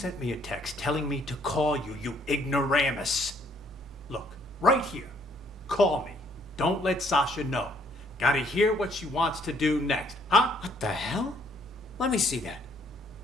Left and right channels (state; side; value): normal; both; correlation 0.66